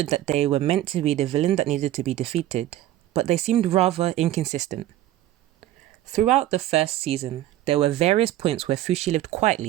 that they were meant to be the villain that needed to be defeated, but they seemed rather inconsistent. Throughout the first season, there were various points where Fushi lived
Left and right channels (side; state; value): left; quieter; 13.7 dB